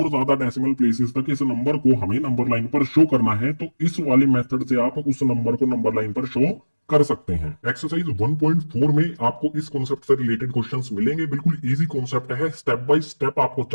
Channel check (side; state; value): both; inverted; correlation -1.00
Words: ज्यादा डेसिमल प्लेसेस तक इस नंबर को हमें नंबर लाइन पर शो करना है, तो इस वाले मेथड से आप उस नंबर को नंबर लाइन पर शो कर सकते हैं। एक्सरसाइज 1.4 में आपको इस कॉन्सेप्ट से रिलेटेड क्वेश्चंस मिलेंगे। बिल्कुल इजी कॉन्सेप्ट है, स्टेप बाय स्टेप आपको